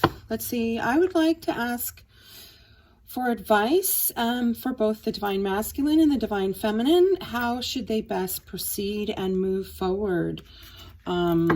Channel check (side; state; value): both; identical; correlation 1.00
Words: let's see, I would like to ask for advice for both the Divine Masculine and the Divine Feminine. How should they best proceed and move forward,